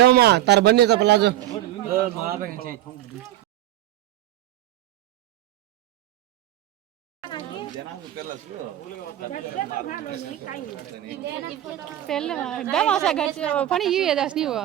తర బన్నీ ప్లాజో పెళ్ళి దమాసా గచ్చి పని ఇవి ఏదాస్ నీవు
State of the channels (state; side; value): quieter; left; 13.3 dB